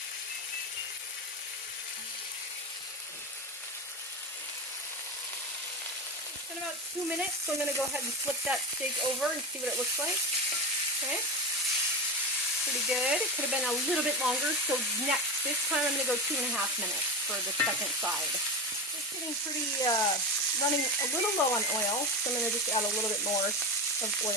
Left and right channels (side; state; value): both; normal; correlation 0.21